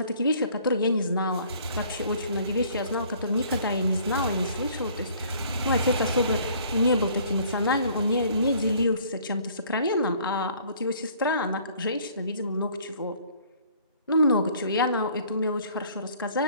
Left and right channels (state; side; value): inverted; both; correlation -0.57